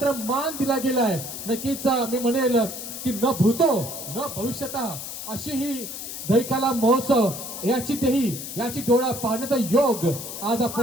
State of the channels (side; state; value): left; noise; hiss, 8 dB below the sound